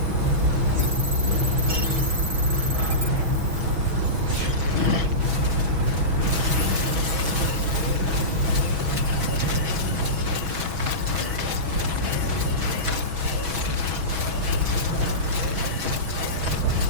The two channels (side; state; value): left; late; 6.2 ms